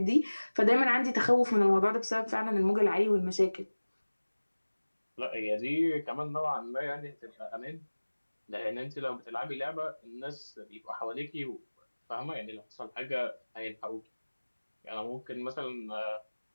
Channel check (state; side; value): inverted; both; correlation -1.00